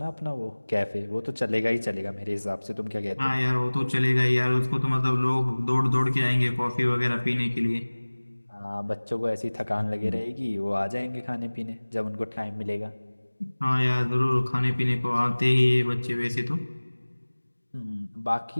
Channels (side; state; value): both; inverted; correlation -1.00